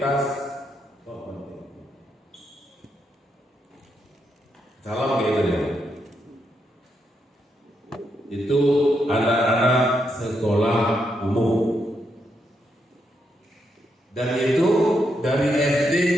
salam gitu ya. Itu anak-anak sekolah umum. Dan itu dari SD,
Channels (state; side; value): normal; both; correlation 0.80